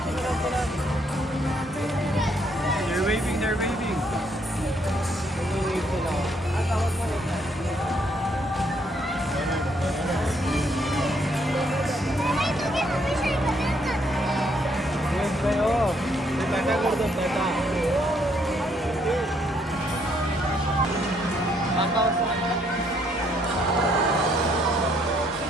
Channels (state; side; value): normal; both; correlation 0.70